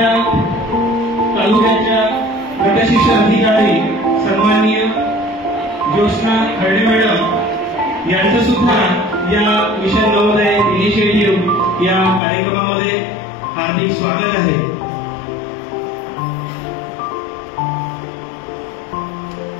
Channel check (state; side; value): drops out; right; at 12.2 s